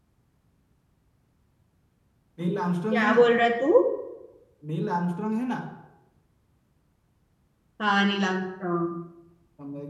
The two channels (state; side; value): identical; both; correlation 1.00